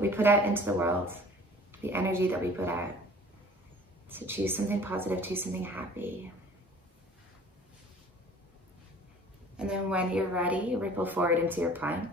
we put out into the world, the energy that we put out. So choose something positive, choose something happy. And then when you're ready, ripple forward into your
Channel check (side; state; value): both; normal; correlation 0.48